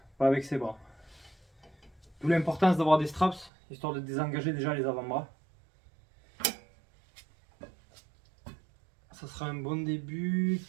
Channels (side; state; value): left; drops out; at 3.5 s